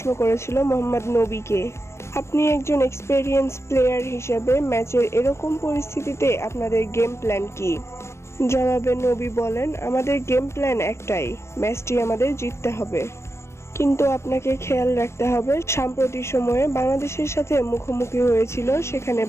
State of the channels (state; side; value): late; right; 0.13 ms